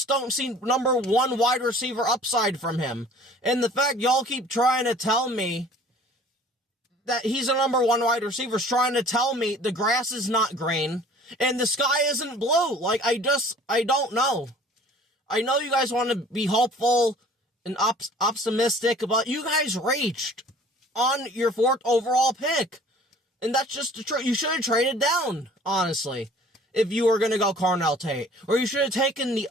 don't see number 1 wide receiver upside from him. And the fact y'all keep trying to tell me that he's a number 1 wide receiver is trying to tell me the grass is not green and the sky isn't blue. Like, I don't know. I know you guys want to be hopeful and optimistic, but you guys reached on your 4th overall pick. And that's just the truth. You should have traded down, honestly, if you were going to go Carnell Tate. Or you should have taken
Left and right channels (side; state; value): both; normal; correlation 0.50